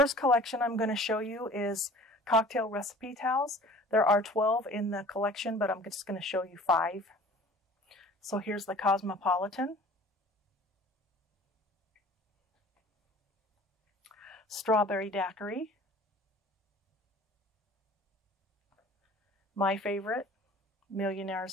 collection I'm going to show you is cocktail recipe towels. There are 12 in the collection, but I'm just going to show you 5. So here's the Cosmopolitan, Strawberry Daiquiri, my favorite,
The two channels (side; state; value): both; normal; correlation 0.47